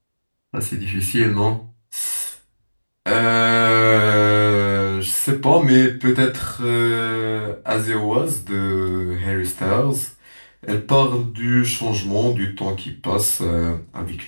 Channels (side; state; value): both; inverted; correlation -1.00